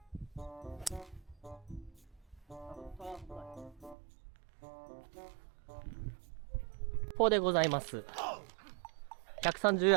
ここでございます。130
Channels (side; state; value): left; drops out; at 4.0 s